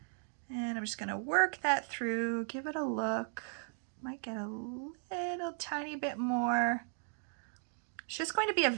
And I'm just going to work that through, give it a look. Might get a little tiny bit more. It's just going to be a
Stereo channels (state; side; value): silent; left; 54 dB below the other